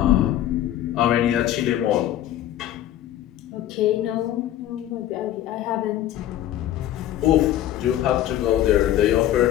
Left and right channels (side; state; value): right; quieter; 12.3 dB